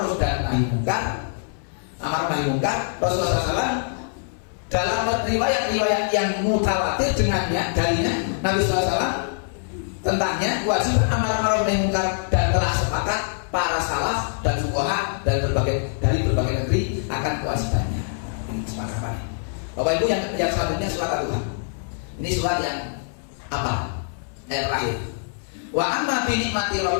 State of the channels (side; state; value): right; silent; 59 dB below the other